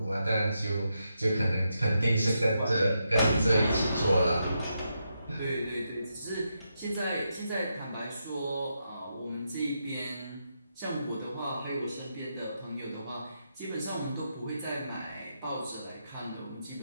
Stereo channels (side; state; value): both; inverted; correlation -0.83